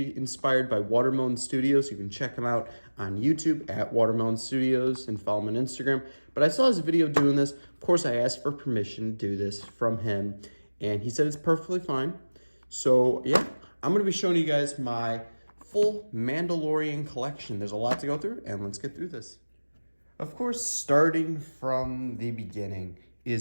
inspired by Watermelon Studios. You can check them out on YouTube at Watermelon Studios and follow them on Instagram. But I saw his video doing this. Of course, I asked for permission to do this from him, and he said it's perfectly fine. So yeah, I'm gonna be showing you guys my full Mandalorian collection. There's a lot to go through, and let's get through this. Of course, starting from the beginning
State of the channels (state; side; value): inverted; both; correlation -1.00